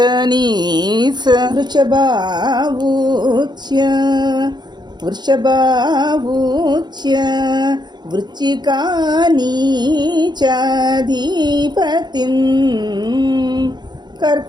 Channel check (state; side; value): late; left; 0.21 ms